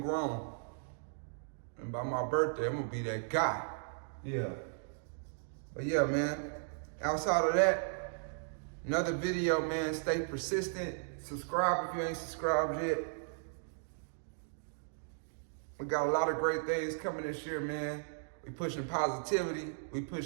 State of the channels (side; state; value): left; silent; digital silence